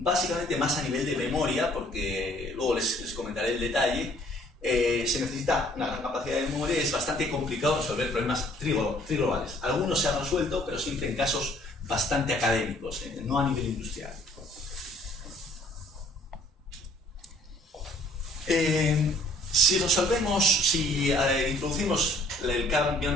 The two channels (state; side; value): normal; both; correlation 0.59